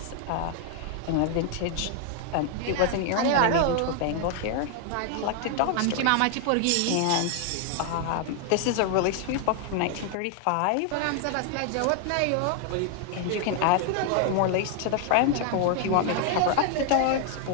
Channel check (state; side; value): different; both; correlation 0.00